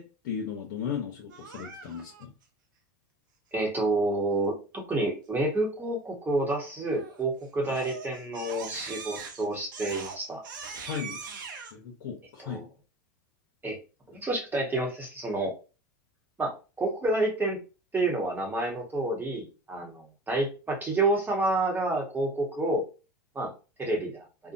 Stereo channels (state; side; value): normal; both; correlation 0.41